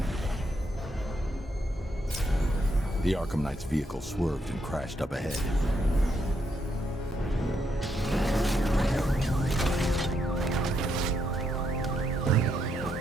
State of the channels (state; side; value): normal; both; correlation 0.78